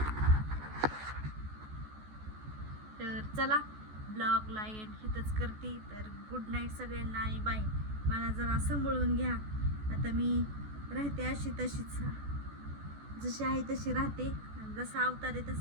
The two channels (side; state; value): left; late; 14 ms